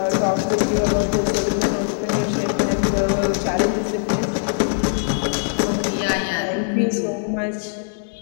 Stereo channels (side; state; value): right; silent; 65 dB below the other